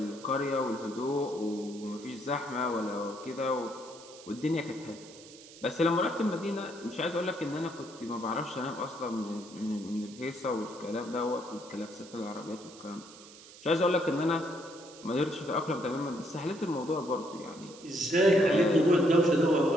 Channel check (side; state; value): right; noise; hiss, 19 dB below the sound